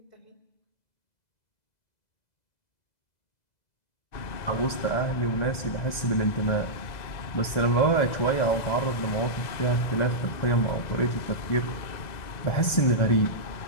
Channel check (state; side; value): late; right; 2.0 ms